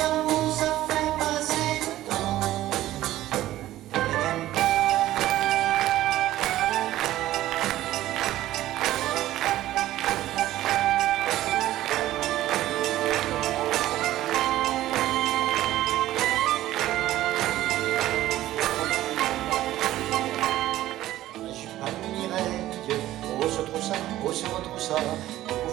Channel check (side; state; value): left; quieter; 14.6 dB